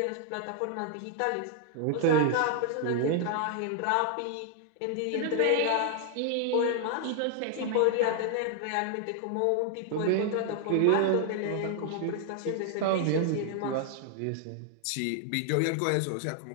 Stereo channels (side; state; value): both; different; correlation 0.00